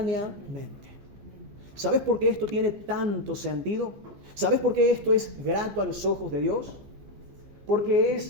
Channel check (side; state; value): left; late; 15 ms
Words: ¿Sabes por qué esto tiene tanto sentido? ¿Sabes por qué esto es grato a los ojos de Dios? Porque